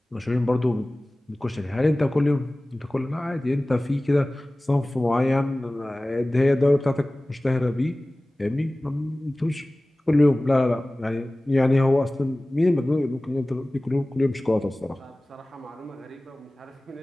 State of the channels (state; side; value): normal; both; correlation 0.98